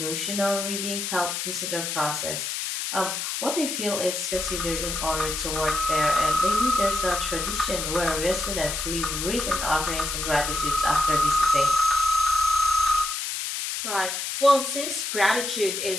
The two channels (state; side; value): noise; left; hiss, 3 dB below the sound